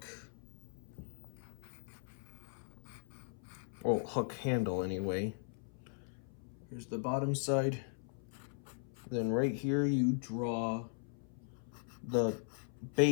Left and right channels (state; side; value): silent; right; 52 dB below the other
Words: Oh, hook handle anyway. Here's the bottom side. Then right here you draw the